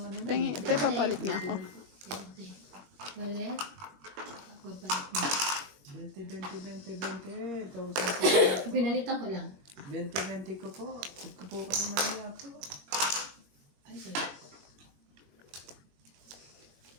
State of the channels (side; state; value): left; late; 21 ms